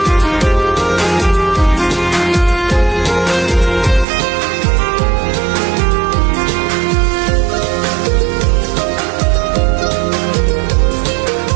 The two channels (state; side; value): drops out; left; at 4.0 s